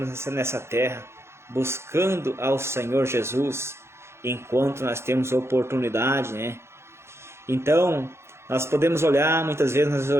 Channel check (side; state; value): left; late; 0.13 ms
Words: nessa terra, buscando ao Senhor Jesus, enquanto nós temos oportunidade, né? Então, nós podemos olhar, muitas vezes nós